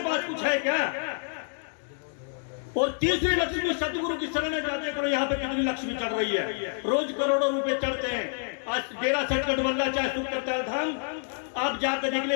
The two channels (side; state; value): right; silent; 59 dB below the other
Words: पास कुछ है क्या? और तीसरी लक्ष्मी सतगुरु की शरण में जाते करो। यहाँ पे कितनी लक्ष्मी चढ़ रही है, रोज करोड़ों रुपए चढ़ते हैं। आज डेरा सटकट वल्ला चाहे सुख करता धाम, आप जाकर निकले,